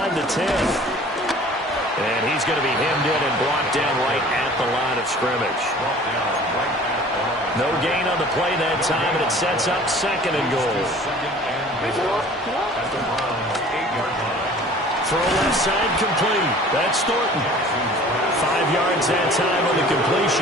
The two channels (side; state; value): both; normal; correlation 0.47